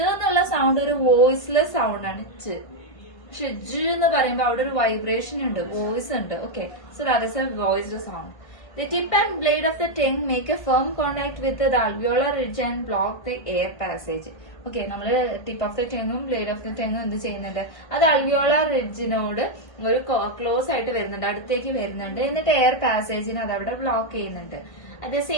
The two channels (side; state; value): right; late; 1.5 ms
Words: എന്നുള്ള സൗണ്ട് ഒരു വോയിസ്ലെസ് സൗണ്ട് ആണ് ച. പക്ഷെ ജ എന്ന് പറയുമ്പോൾ അവിടെ ഒരു വൈബ്രേഷൻ ഉണ്ട്, വോയിസ് ഉണ്ട്. Okay. So that is A voiced sound. The tip and blade of the tongue make a firm contact with the alveolar ridge and block the air passage. Okay. നമ്മള് ടിപ്പ് ഓഫ് ദ ടങ്ങും ബ്ലേഡ് ഓഫ് ദ ടങ്ങും എന്ത് ചെയ്യുന്നുണ്ട്, അത് അൽവിയോളാർ റിഡ്ജിനോട് ഒരു ക്ലോസ് ആയിട്ട് വരുന്നുണ്ട്, അടുത്തേക്ക് വരുന്നുണ്ട്. എന്നിട്ട് എയർ പാസേജിന് അത് അവിടെ ബ്ലോക്ക് ചെയ്യുന്നുണ്ട്. At the